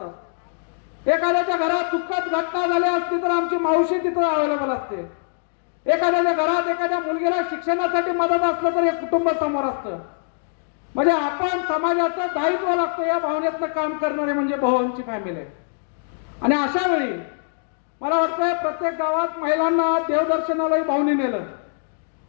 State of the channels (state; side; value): silent; right; digital silence